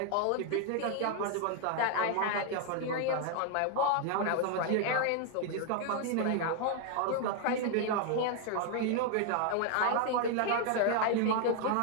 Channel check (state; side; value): different; both; correlation 0.00